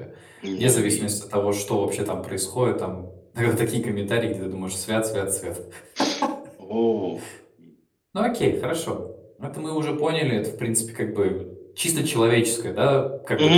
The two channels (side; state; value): both; identical; correlation 1.00